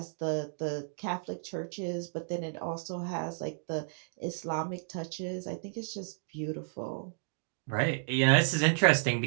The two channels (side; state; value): left; silent; digital silence